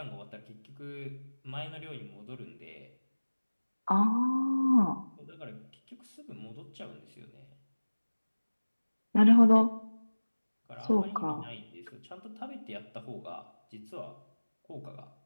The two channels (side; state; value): both; inverted; correlation -1.00